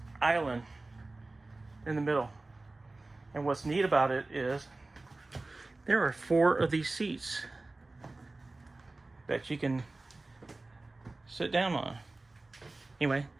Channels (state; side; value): quieter; left; 3.1 dB